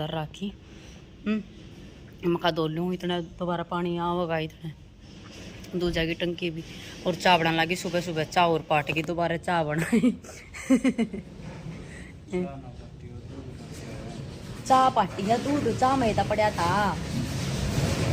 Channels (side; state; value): both; identical; correlation 1.00